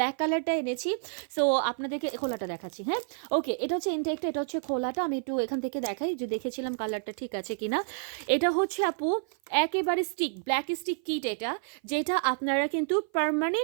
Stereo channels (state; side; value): silent; left; 55 dB below the other